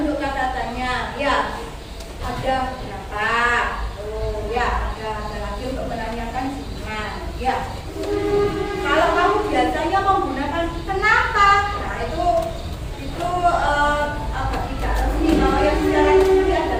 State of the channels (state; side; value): identical; both; correlation 1.00